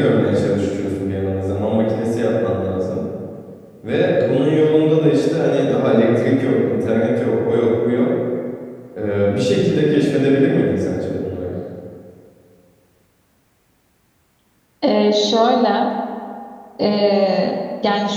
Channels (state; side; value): identical; both; correlation 1.00